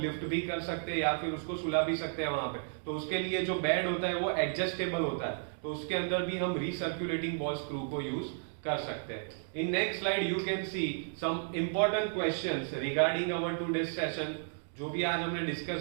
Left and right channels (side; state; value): left; silent; digital silence